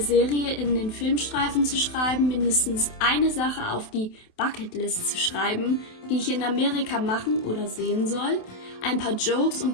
in den Filmstreifen zu schreiben, mindestens eine Sache auf die Bucketlist zu schreiben, die ich in Amerika machen oder sehen soll, ein paar Jokes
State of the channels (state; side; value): late; right; 27 ms